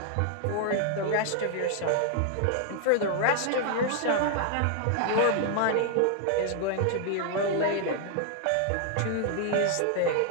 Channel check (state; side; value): different; both; correlation 0.00